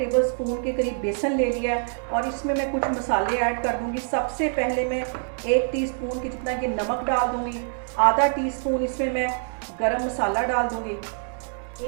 के करीब बेसन ले लिया है और इसमें मैं कुछ मसाले ऐड कर दूँगी। सबसे पहले मैं 1 टीस्पून के जितना ये नमक डाल दूँगी। आधा टीस्पून इसमें मैं गरम मसाला डाल दूँगी।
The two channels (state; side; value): silent; left; digital silence